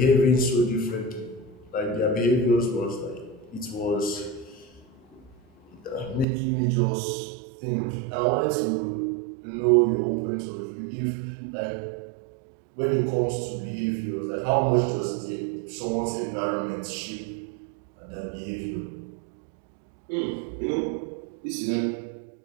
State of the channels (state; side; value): drops out; left; at 6.2 s